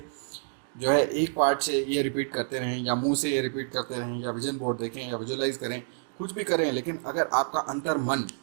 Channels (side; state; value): left; silent; 59 dB below the other